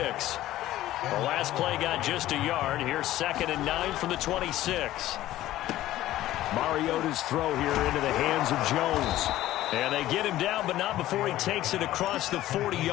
The last play got just a yard. Here's 2nd and 9 from the 26. Mariota's throw here into the hands of Jones. And they get him down, but not before he takes it across the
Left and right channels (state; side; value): quieter; right; 14.6 dB